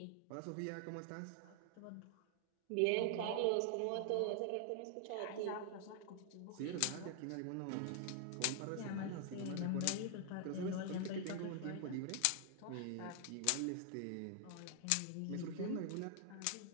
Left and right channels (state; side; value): different; both; correlation 0.00